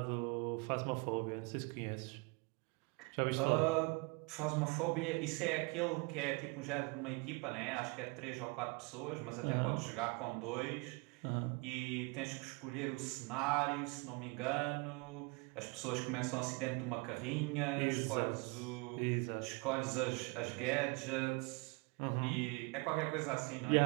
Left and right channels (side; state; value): left; quieter; 29.4 dB